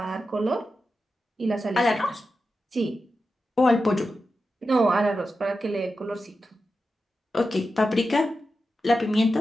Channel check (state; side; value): normal; both; correlation 0.90